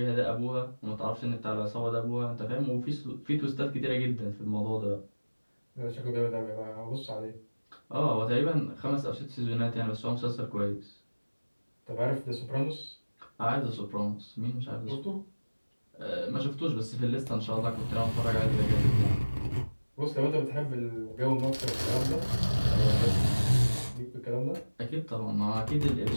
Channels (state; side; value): inverted; both; correlation -1.00